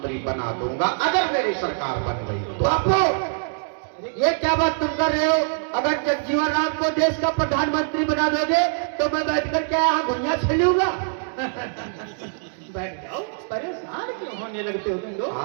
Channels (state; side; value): silent; left; digital silence